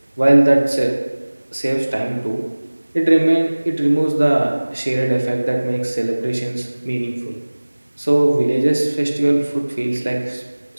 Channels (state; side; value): inverted; both; correlation -1.00